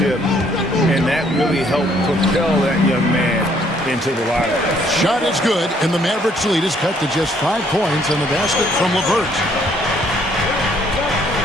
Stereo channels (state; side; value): normal; both; correlation 0.65